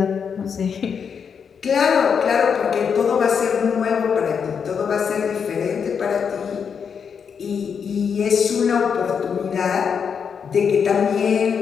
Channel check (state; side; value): quieter; right; 6.7 dB